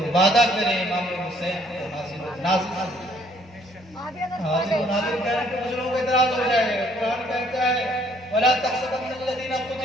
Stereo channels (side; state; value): both; normal; correlation 0.63